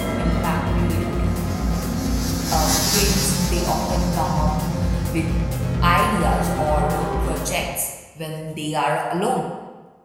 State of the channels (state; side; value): identical; both; correlation 1.00